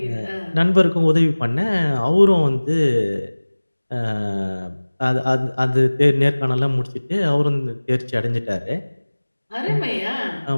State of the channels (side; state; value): both; inverted; correlation -1.00